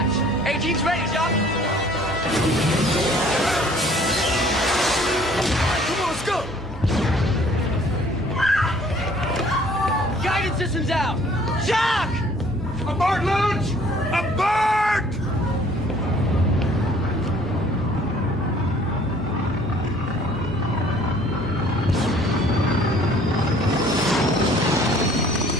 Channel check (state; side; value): normal; both; correlation 0.56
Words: 18's ready, Jock. Come on, let's go! Guidance system's out. Jock! Aboard launch! Aboard!